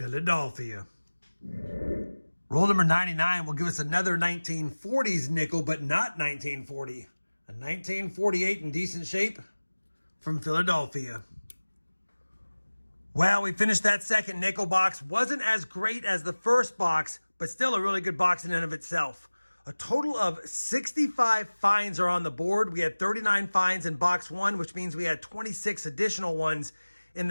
Roll number 99 will give us another 1940s nickel, but not 1940. A 1948 in decent shape from Philadelphia. Well, we finished that second nickel box. Wasn't as great as the first box, but still a really good box in and of itself. A total of 65 finds are on the board. We had 39 finds in box one, which means we had 26 additional ones in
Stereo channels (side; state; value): both; inverted; correlation -1.00